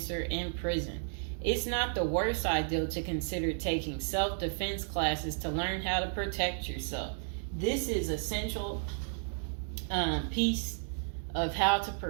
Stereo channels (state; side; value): silent; left; digital silence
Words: in prison. It's not the worst idea to consider taking self-defense classes to learn how to protect yourself. This is essential piece of how to